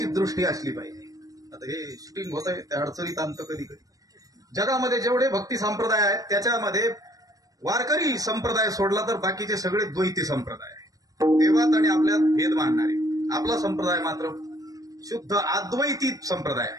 दृष्टी असली पाहिजे. आता हे शूटिंग होत आहे त्या अडचणीत आणतं कधी कधी. जगामध्ये जेवढे भक्ती संप्रदाय आहेत त्याच्यामध्ये वारकरी संप्रदाय सोडला तर बाकीचे सगळे द्वैती संप्रदाय आहेत. देवात आणि आपल्यात भेद मानणारे. आपला संप्रदाय मात्र शुद्ध अद्वैती संप्रदाय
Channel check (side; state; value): left; late; 0.17 ms